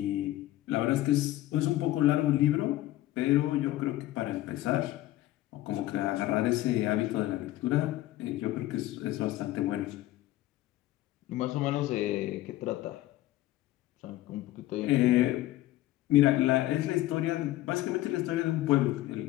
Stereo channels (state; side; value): quieter; right; 15.6 dB